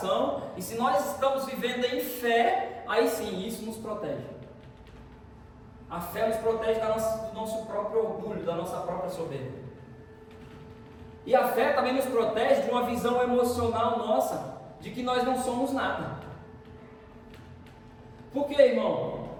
e se nós estamos vivendo em fé, aí sim, isso nos protege. A fé nos protege do nosso próprio orgulho, da nossa própria soberba. E a fé também nos protege de uma visão emocional nossa, de que nós não somos nada. Por quê, irmão?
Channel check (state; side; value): identical; both; correlation 1.00